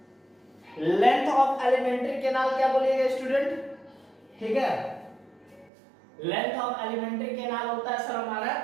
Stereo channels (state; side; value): drops out; left; at 5.7 s